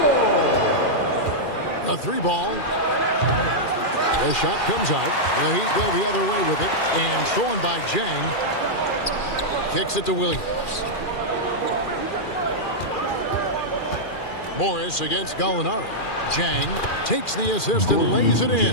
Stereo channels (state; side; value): late; right; 2.4 ms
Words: A 3-ball. The shot comes out. The Heat go the other way with it. And stolen by Jang. Kicks it to Williams. Morris against Gallinari. Jang takes the assist and lays it